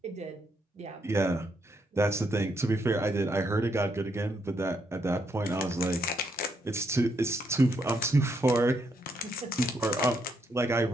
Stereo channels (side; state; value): both; normal; correlation 0.76